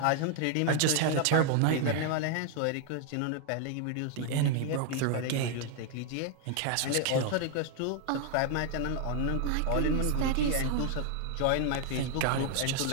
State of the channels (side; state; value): both; different; correlation 0.00